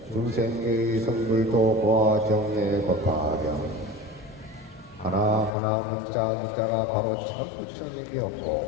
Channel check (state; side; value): drops out; right; at 5.5 s